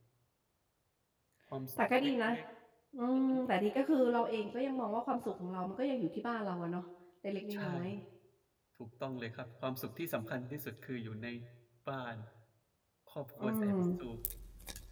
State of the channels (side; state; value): both; identical; correlation 1.00